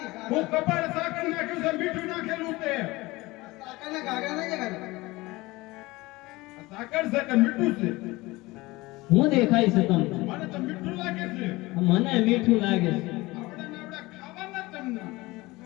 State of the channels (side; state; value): right; quieter; 21.1 dB